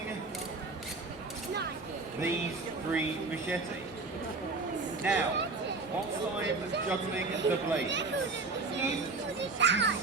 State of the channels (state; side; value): quieter; left; 3.8 dB